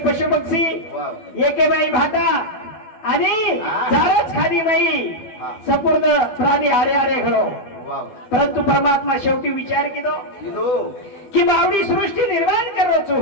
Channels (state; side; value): late; right; 12 ms